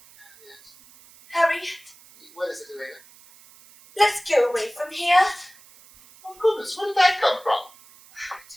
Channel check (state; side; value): noise; right; hiss, 25 dB below the sound